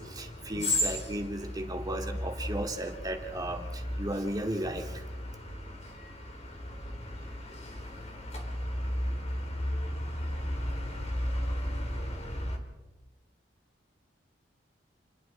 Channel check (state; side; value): normal; both; correlation 0.72